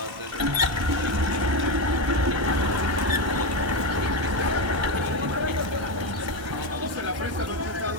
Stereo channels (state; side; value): late; left; 1.3 ms